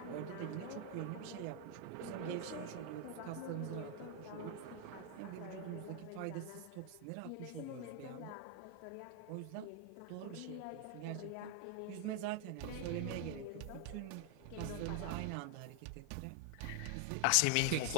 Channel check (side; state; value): both; different; correlation 0.00